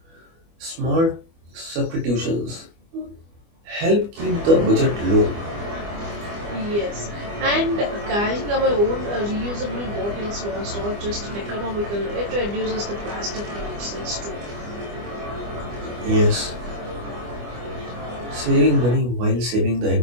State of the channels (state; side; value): late; left; 25 ms